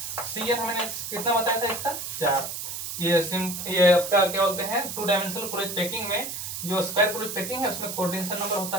CN मैंने कितना बताया था इसका, 4। ये आपका क्या बोलते हैं 2 डायमेंशनल क्लोज पैकिंग में जो स्क्वायर क्लोज पैकिंग है उसमें कोऑर्डिनेशन नंबर होता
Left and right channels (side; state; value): right; noise; hiss, 6 dB below the sound